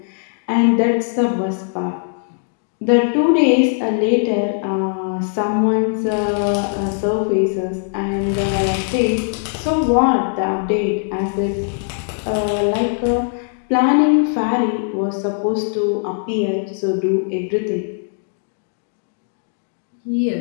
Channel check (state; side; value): silent; right; 66 dB below the other